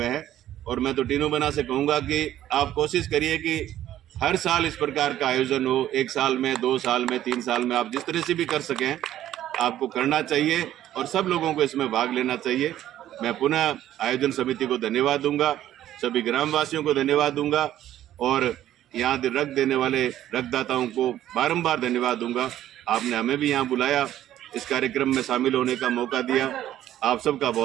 हैं। और मैं तो टीनू बना से कहूँगा कि आप कोशिश करिए कि हर साल इस प्रकार का आयोजन हो, 1 साल में, 2 साल में, 3 साल में, आप जिस तरह से भी कर सकें आपको करना चाहिए और सब लोगों को इसमें भाग लेना चाहिए। मैं पुनः आयोजन समिति को धन्यवाद दूंगा, सभी ग्रामवासियों को धन्यवाद दूंगा और यहाँ रक्त देने वाले रक्तदाताओं को बारंबार धन्यवाद दूंगा। आपने हमें भी यहाँ बुलाया, इस कार्यक्रम में शामिल होने का मौका दिया। आप सबका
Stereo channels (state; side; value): quieter; left; 12.5 dB